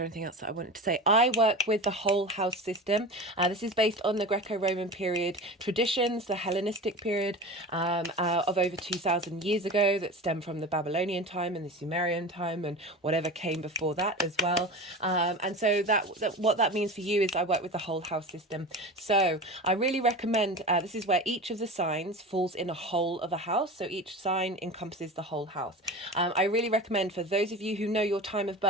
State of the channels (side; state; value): both; normal; correlation 0.31